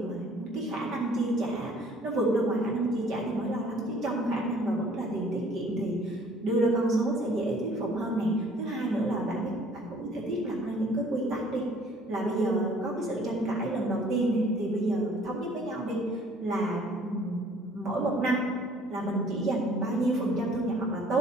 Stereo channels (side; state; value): both; normal; correlation 0.56